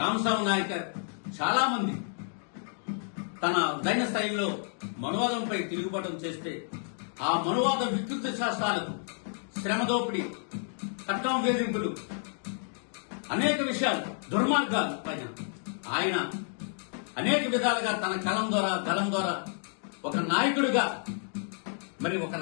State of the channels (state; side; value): silent; right; 58 dB below the other